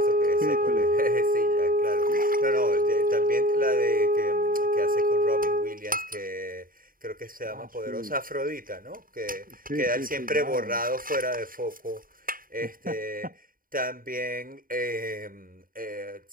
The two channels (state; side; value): late; left; 0.41 ms